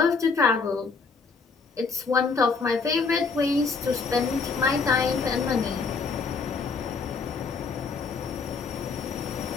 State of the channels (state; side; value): quieter; right; 4.7 dB